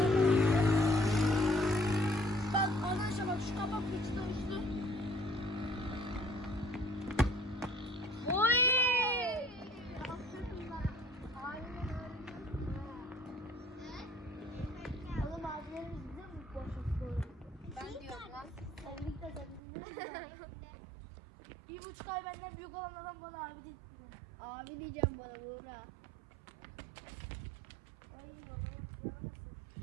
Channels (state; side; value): drops out; left; at 19.6 s